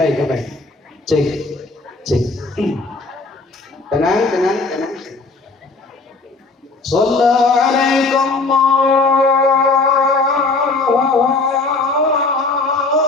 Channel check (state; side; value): quieter; right; 3.6 dB